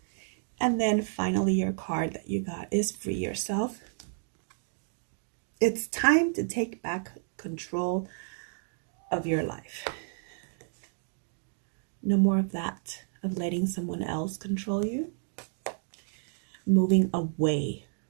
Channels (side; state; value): left; silent; 57 dB below the other